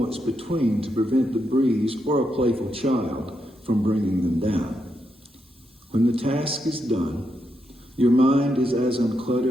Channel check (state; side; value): normal; both; correlation 0.82